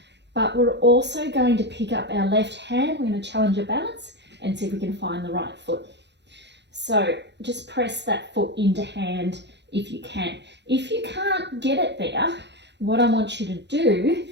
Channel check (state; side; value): late; left; 0.51 ms